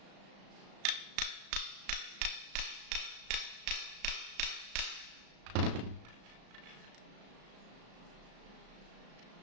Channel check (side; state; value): left; late; 35 ms